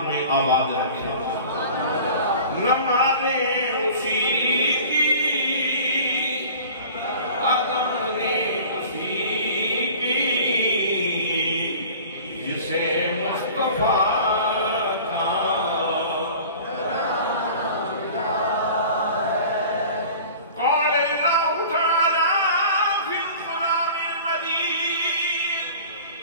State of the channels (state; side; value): inverted; both; correlation -0.43